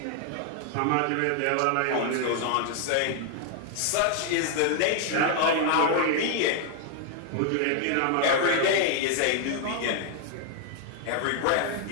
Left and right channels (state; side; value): different; both; correlation 0.00